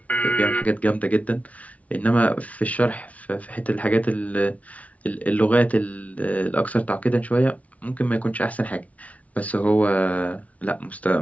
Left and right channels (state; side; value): late; right; 0.068 ms